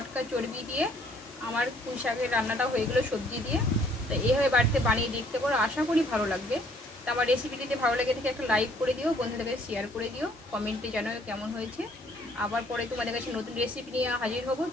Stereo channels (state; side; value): normal; both; correlation 0.62